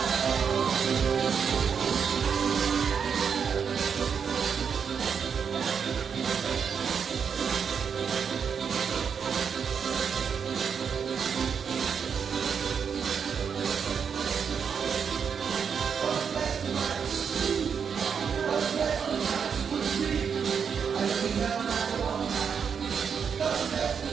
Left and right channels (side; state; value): left; quieter; 6.8 dB